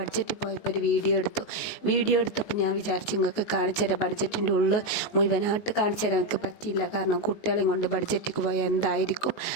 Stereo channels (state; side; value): late; right; 19 ms